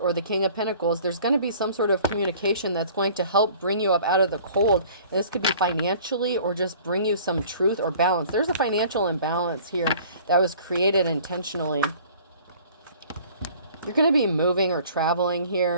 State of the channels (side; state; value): both; inverted; correlation -0.50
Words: the King of Pentacles, there's going to be some sort of communication that's going to help bring you up out of the cold. And this could be financially or just bring you some truth or balance. There's a financial imbalance here that was created intentionally. You're going to be moving or traveling